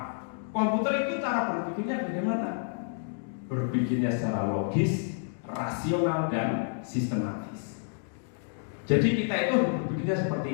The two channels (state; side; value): silent; right; digital silence